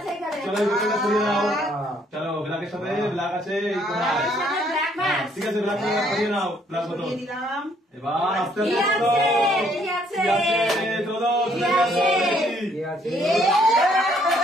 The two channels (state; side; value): normal; both; correlation 0.66